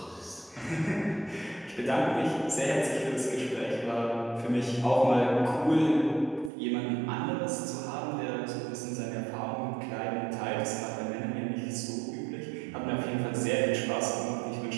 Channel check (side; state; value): left; drops out; at 6.5 s